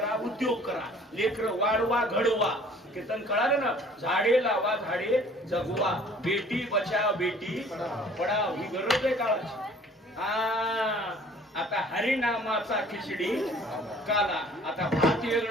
उद्योग करा, लेकर वाढवा, घडवा. कीर्तन कळालं ना, झाडे लावा, झाडे जगवा, बेटी बचाव बेटी पढाव, ही गरज आहे काळाची. आता हरिनामाचा खिचडी काला, आता भात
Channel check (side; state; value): both; normal; correlation 0.53